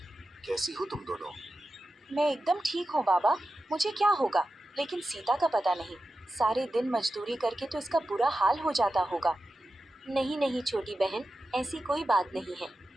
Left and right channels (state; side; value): normal; both; correlation 0.92